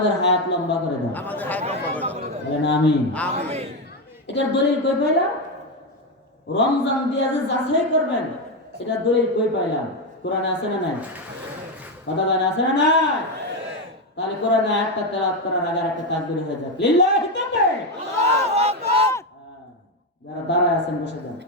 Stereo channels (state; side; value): normal; both; correlation 0.09